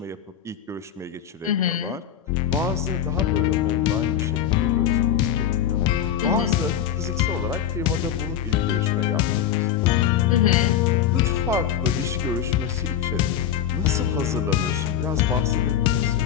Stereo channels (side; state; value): right; quieter; 9.5 dB